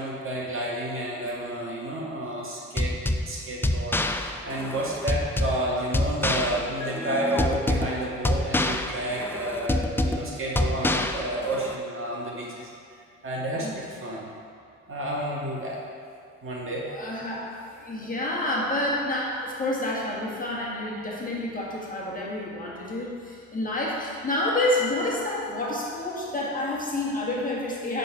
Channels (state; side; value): normal; both; correlation 0.34